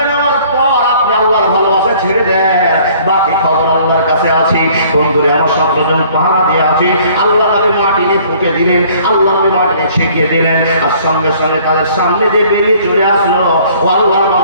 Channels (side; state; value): both; inverted; correlation -0.56